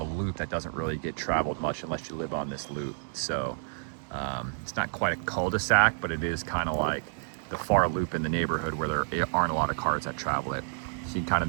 a loop that doesn't really get traveled much unless you live on this loop. So it's not quite a cul-de-sac, but it is kind of like the far loop in the neighborhood where there aren't a lot of cars that travel it. See kind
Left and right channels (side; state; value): left; silent; 58 dB below the other